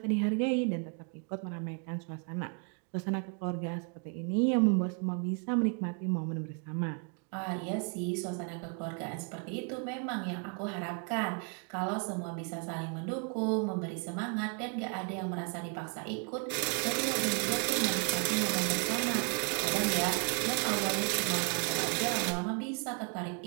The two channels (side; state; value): left; quieter; 37.0 dB